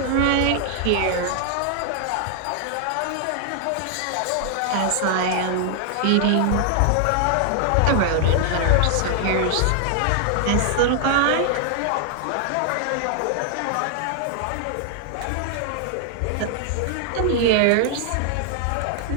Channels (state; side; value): different; both; correlation 0.00